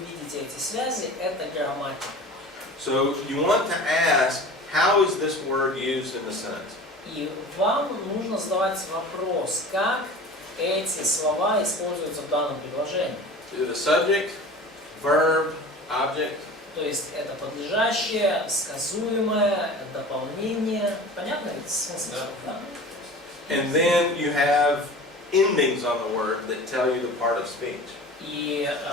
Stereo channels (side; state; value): both; normal; correlation 0.38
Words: видите эти связи, это грамматика. So you want to ask, how is this word used in the sentence? И вам нужно задавать вопрос, как эти слова используются в данном предложении. The subject, verb, object. То есть это подлежащее, сказуемое, дополнение. Понятно ведь смысл? Да. And then you have endings on the word that tell you the part of speech. И